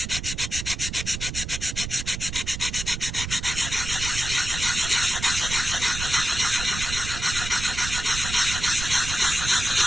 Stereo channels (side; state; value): right; noise; rumble, 7 dB below the sound